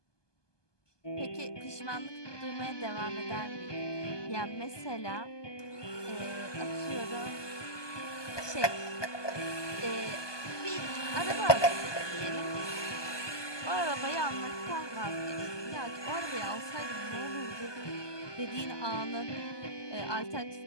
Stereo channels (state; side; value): late; right; 1.2 ms